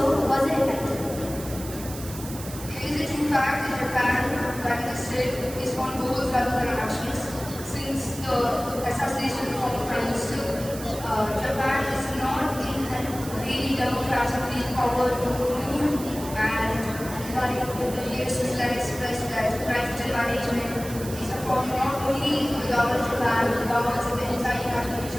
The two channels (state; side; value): noise; right; hiss, 13 dB below the sound